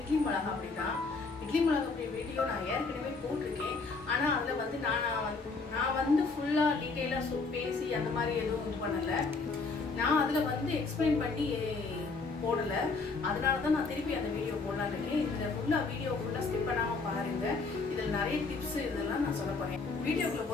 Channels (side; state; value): right; quieter; 4.1 dB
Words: மிளகா அப்படி தான். இட்லி மிளகா அப்படி வீடியோ நான் ஏற்கனவே போட்டிருக்கேன். ஆனால் அதில் வந்து நான் வந்து ஃபுல்லாக டீட்டெயிலாக பேசி அந்த மாதிரி எதுவும் இது பண்ணலை. நான் அதில் வந்து எக்ஸ்பிளைன் பண்ணி போடலை. அதனால தான் நான் திருப்பி அந்த வீடியோ போடலான்னு இருக்கேன். இதில் வீடியோ ஃபுல்லாக ஸ்கிப் பண்ணாமல் பாருங்கள். இதில் நிறைய டிப்ஸ் இதெல்லாம் நான் சொல்ல போகிறேன். வீடியோக்குள்ளே